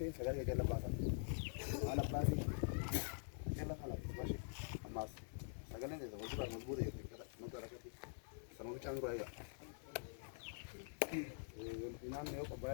sagale jalla basa ala basi jalla khala bashi amas sagale ne zawo ba mazbure yake kada magara kati sanu changu raya inan ne ko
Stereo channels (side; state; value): right; silent; digital silence